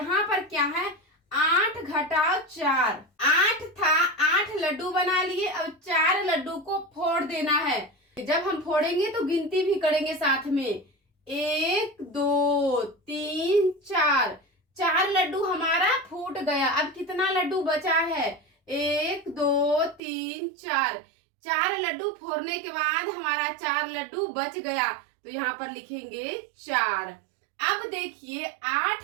पर क्या है, 8 घटाओ 4। 8 था, 8 लड्डू बना लिए, अब 4 लड्डू को फोड़ देना है। जब हम फोड़ेंगे तो गिनती भी करेंगे साथ में। 1 2 3 4, 4 लड्डू हमारा फूट गया। अब कितना लड्डू बचा है? 1 2 3 4, 4 लड्डू फोड़ने के बाद हमारा 4 लड्डू बच गया, तो यहाँ पर लिखेंगे 4। अब देखिए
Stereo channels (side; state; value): left; drops out; at 20.0 s